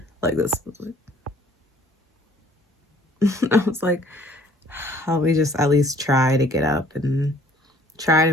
like this. I was like, let me just at least try to get up and try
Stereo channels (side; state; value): both; normal; correlation 0.57